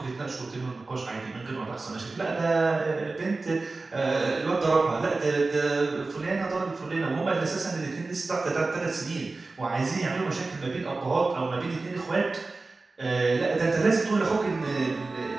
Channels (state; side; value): quieter; left; 3.6 dB